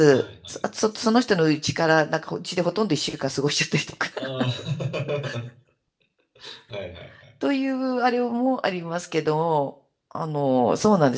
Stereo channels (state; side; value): identical; both; correlation 1.00